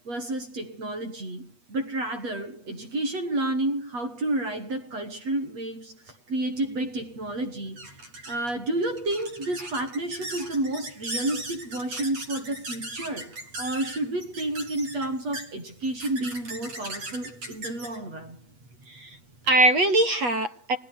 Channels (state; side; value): late; left; 8.3 ms